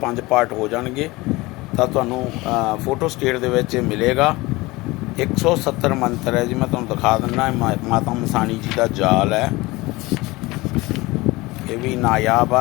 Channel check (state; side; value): quieter; right; 21.5 dB